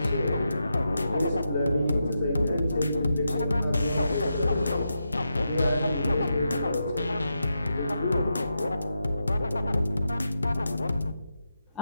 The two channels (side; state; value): both; inverted; correlation -0.86